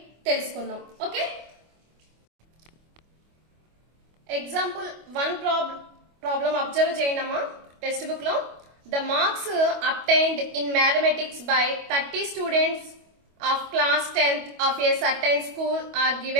తెలుసుకుందాం. ఓకే, ఎగ్జాంపుల్ 1 ప్రాబ్లం అబ్జర్వ్ చేయండి అమ్మా టెక్స్ట్ బుక్ లో. The marks obtained in mathematics by 30 students of class 10th of a certain school are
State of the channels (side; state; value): left; late; 25 ms